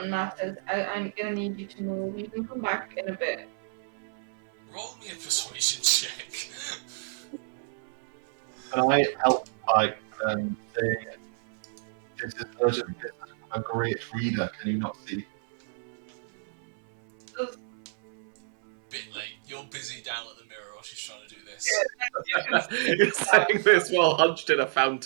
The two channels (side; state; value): left; silent; 58 dB below the other